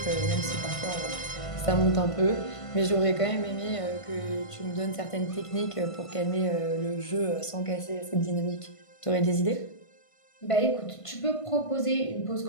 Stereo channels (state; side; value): late; right; 1.5 ms